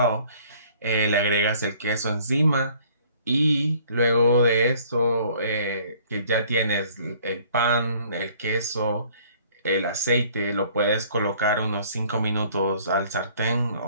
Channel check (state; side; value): inverted; both; correlation -0.56